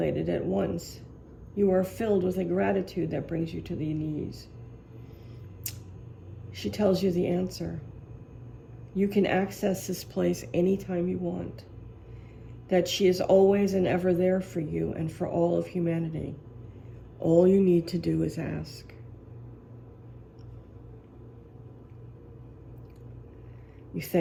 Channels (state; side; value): identical; both; correlation 1.00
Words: at once. You are filled with a gratitude that brings you to the knees. She tells you the answer. You can access this place anytime you want. That she is always and ever there for you and for all of humanity. All you need to do is ask. You